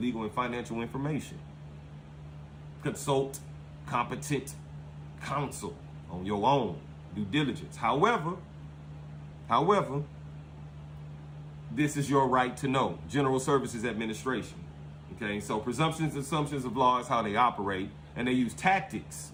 and financial information. Consult competent counsel on your own due diligence. However, this is your right to know. General Services Administration. Okay, so presumptions, assumptions of law is how they operate, and they use tactics.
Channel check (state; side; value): identical; both; correlation 1.00